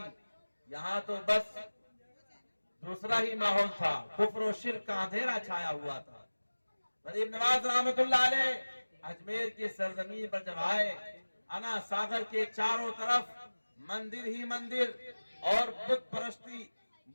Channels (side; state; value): both; inverted; correlation -1.00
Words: یہاں تو بس دوسرا ہی ماحول تھا، کفر و شرک کا اندھیرا چھایا ہوا تھا۔ غریب نواز رحمت اللہ علیہ اجمیر کی سرزمین پر جب آئے، انا ساگر کے چاروں طرف مندر ہی مندر اور بت پرستی